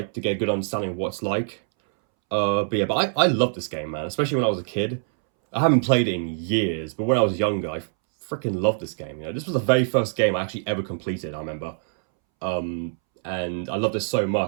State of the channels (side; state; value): left; silent; 62 dB below the other